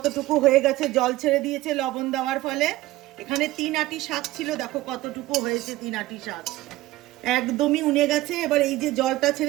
হয়ে গেছে, জল ছেড়ে দিয়েছে লবণ দেওয়ার ফলে। এখানে 3 আঁটি শাক ছিল, দেখো কতটুকু হয়েছে। 3 আঁটি শাক একদমই উনে গেছে। এবার এই যে জলটা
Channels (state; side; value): quieter; left; 17.0 dB